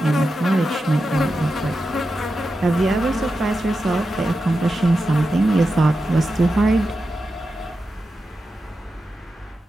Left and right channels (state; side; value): normal; both; correlation 0.90